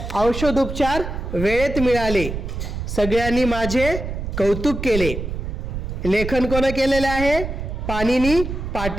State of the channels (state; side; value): noise; right; rumble, 5 dB below the sound